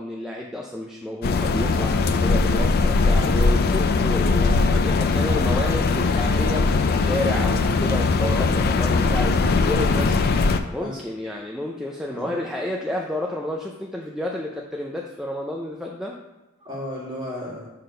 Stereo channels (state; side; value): quieter; right; 3.1 dB